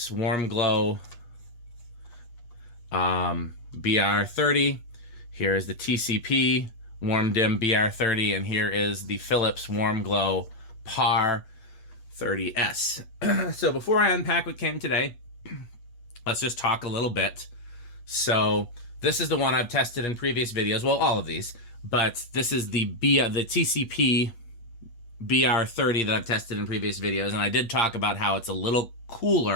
Warm Glow BR30. Here is the TCP Warm Dim BR30, and here is the Philips Warm Glow PAR 30S. So before I unpack what came today, let's just talk a little bit. So this is the one I've tested in previous videos. Well, all of these, but this is the TCP BR30 that I've tested in previous videos, and I did talk about how it's a little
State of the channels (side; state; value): right; late; 8.4 ms